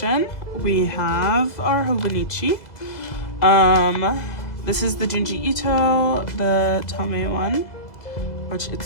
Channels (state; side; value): late; right; 2.0 ms